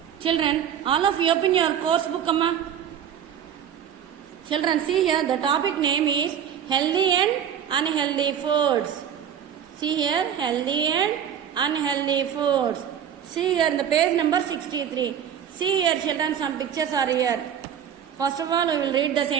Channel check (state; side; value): quieter; left; 9.0 dB